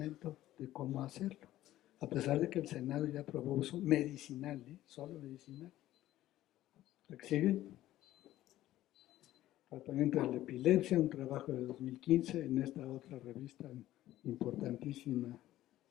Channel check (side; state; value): right; quieter; 14.5 dB